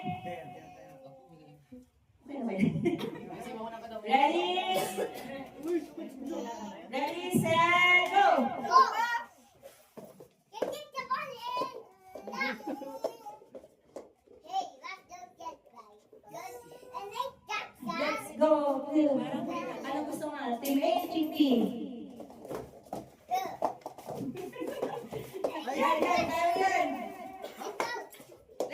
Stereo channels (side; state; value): both; identical; correlation 1.00